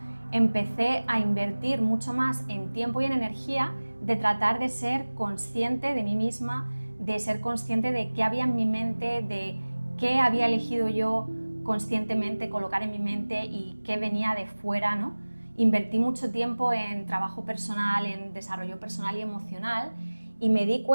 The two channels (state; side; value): inverted; both; correlation -1.00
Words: empecé a invertir mucho más en tiempo y en energía de tratar de ser consciente de mí misma, de ser consciente de qué había en mi mente, de qué había elegido yo conscientemente colocar en mi mente y qué venía de fuera, ¿no? Invertí mucho tiempo en trabajo personal, en desarrollo personal y emocional, y me di